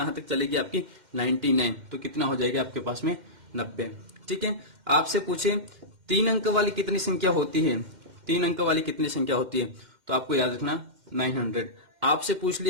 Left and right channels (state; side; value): late; left; 2.1 ms